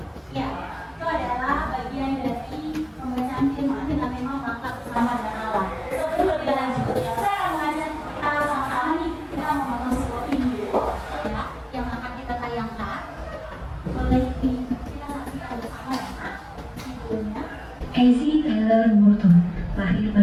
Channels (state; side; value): identical; both; correlation 1.00